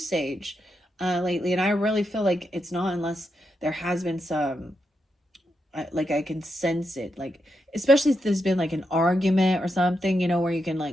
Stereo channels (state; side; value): normal; both; correlation 0.84